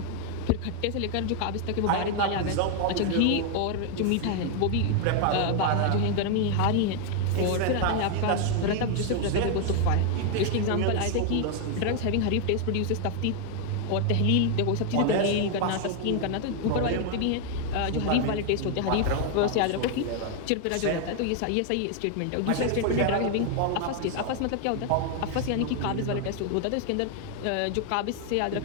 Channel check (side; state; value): both; different; correlation 0.00